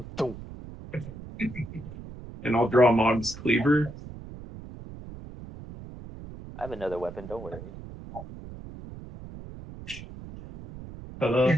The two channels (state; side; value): noise; right; rumble, 14 dB below the sound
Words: dunk. And I'll draw Mog's cleaver. I have another weapon, don't worry. Ta-da.